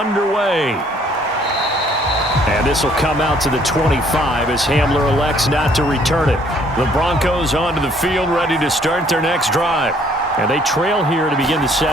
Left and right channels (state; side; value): normal; both; correlation 0.62